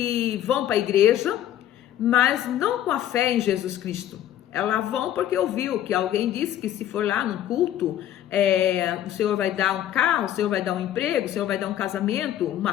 vão para a igreja, mas não com a fé em Jesus Cristo. Elas vão porque ouviu que alguém disse que se for lá num culto, o Senhor vai dar um carro, o Senhor vai dar um emprego, o Senhor vai dar um casamento,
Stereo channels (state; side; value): quieter; right; 11.8 dB